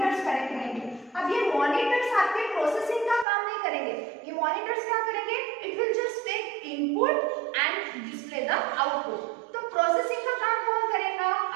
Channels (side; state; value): left; drops out; at 3.2 s